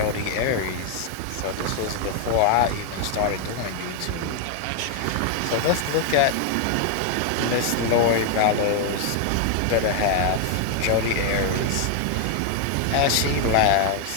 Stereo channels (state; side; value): different; both; correlation 0.00